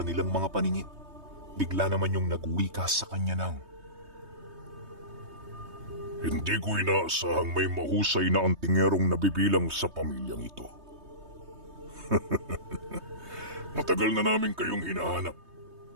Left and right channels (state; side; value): late; left; 3.2 ms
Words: mga paningin, bigla naman yung nagwika sa kanya ng, "Hindi ko inaasahang may mahusay na antingerong nabibilang sa pamilyang ito. Matagal na namin kayong hinahanap,